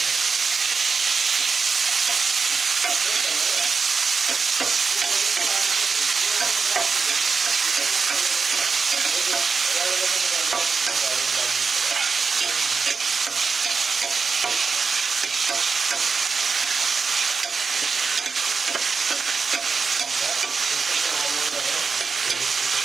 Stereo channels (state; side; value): quieter; left; 5.1 dB